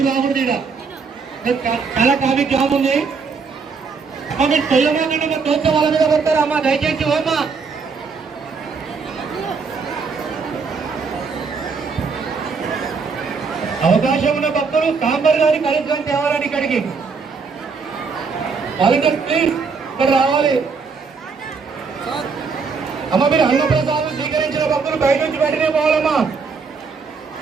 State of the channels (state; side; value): quieter; left; 5.1 dB